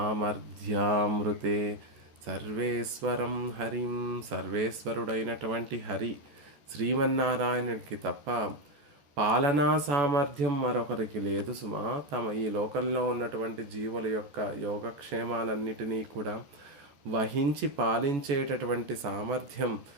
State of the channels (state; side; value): late; left; 14 ms